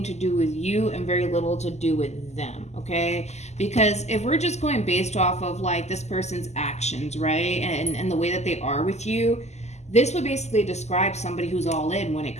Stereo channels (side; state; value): right; late; 0.33 ms